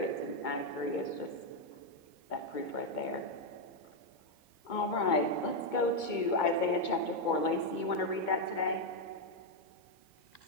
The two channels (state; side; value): late; right; 2.2 ms